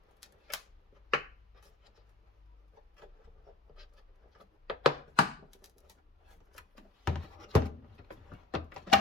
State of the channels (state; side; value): quieter; right; 3.0 dB